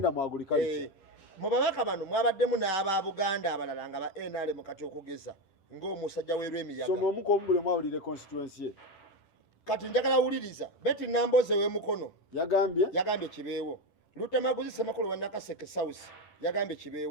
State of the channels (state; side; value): late; right; 10 ms